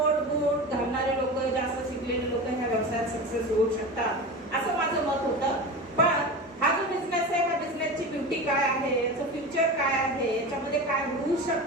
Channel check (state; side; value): normal; both; correlation 0.28